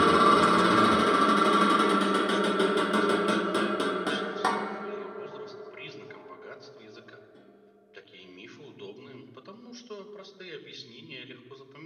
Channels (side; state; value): both; identical; correlation 1.00